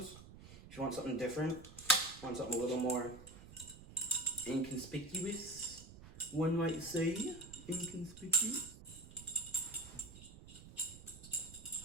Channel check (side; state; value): right; noise; rumble, 17 dB below the sound